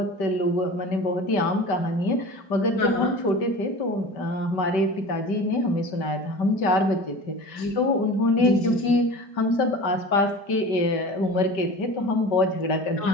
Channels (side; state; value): right; late; 5.1 ms